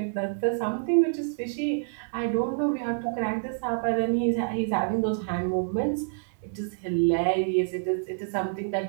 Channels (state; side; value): silent; left; digital silence